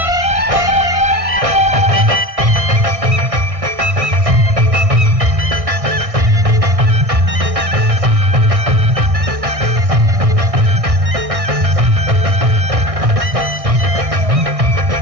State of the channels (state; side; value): late; left; 1.6 ms